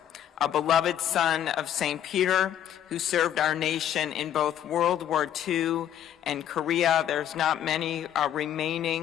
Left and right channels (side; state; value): right; quieter; 10.6 dB